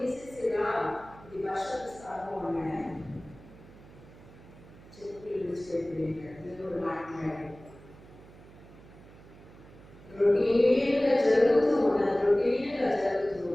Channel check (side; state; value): right; noise; hum, 21 dB below the sound